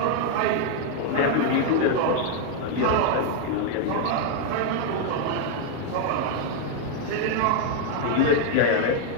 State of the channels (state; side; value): different; both; correlation 0.00